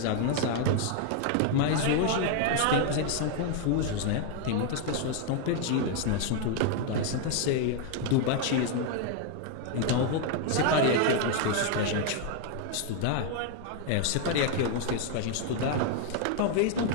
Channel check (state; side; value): different; both; correlation 0.00